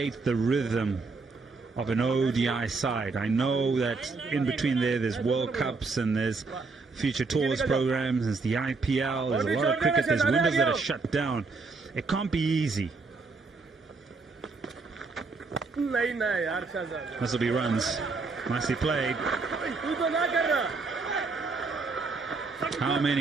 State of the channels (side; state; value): left; quieter; 4.1 dB